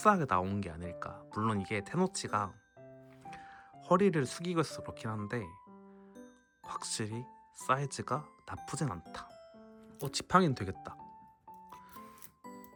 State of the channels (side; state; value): both; identical; correlation 1.00